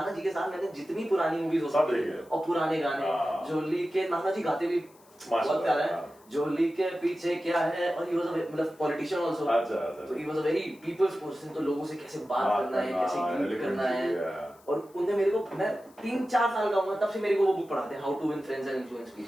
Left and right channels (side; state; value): left; noise; hiss, 29 dB below the sound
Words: जी के साथ मैंने जितनी पुरानी मूवीज हो सकती है और पुराने गाने जोली के नाना जी गाते भी बहुत प्यारा है जोली के पीछे क्या है और ही वाज मतलब पॉलिटिशियन आल्सो तो he was a very people's person तो लोगों से कैसे बात करना है कैसे ग्रीट करना है और उनने मेरे को मैं 3-4 साल का हूँ तब से मेरे को वो बुक पढ़ाते हैं how to win friends and influence